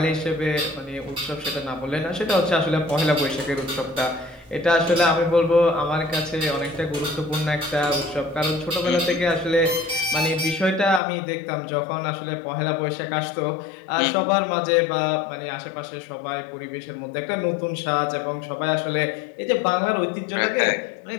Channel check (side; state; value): right; drops out; at 11.0 s